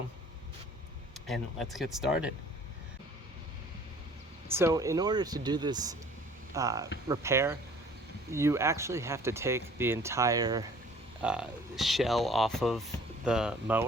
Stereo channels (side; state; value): both; normal; correlation 0.52